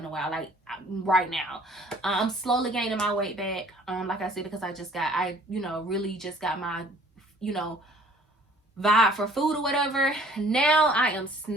a while. Like, right now, I'm slowly gaining my weight back. Like I said, because I really just got my, vibe for food or whatever. Now I am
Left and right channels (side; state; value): both; normal; correlation 0.55